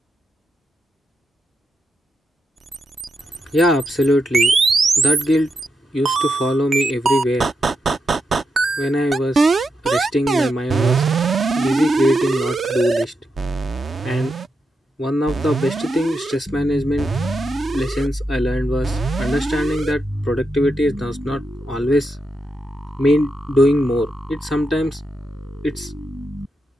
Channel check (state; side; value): normal; both; correlation 0.85